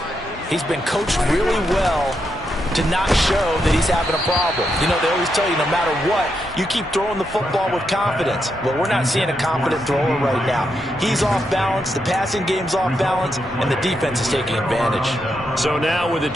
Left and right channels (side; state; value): both; normal; correlation 0.82